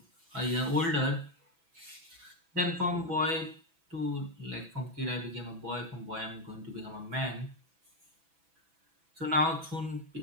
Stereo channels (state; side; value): late; left; 6.0 ms